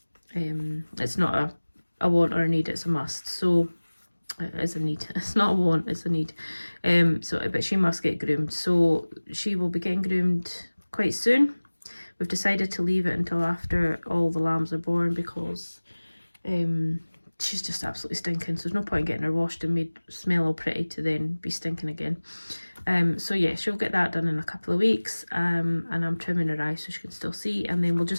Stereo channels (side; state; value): both; inverted; correlation -1.00